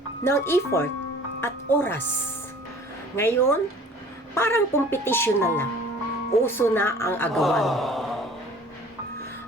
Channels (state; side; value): normal; both; correlation 0.48